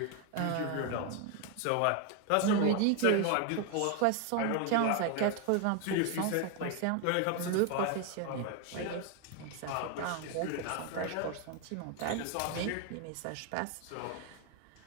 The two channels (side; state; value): both; different; correlation 0.01